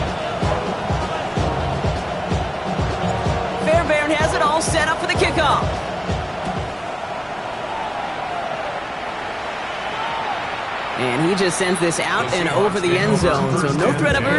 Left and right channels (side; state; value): both; identical; correlation 1.00